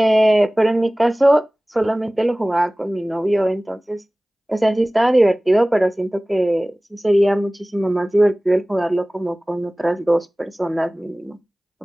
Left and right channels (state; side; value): normal; both; correlation 0.98